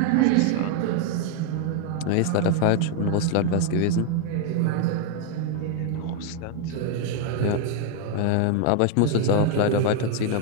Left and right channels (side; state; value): both; different; correlation 0.01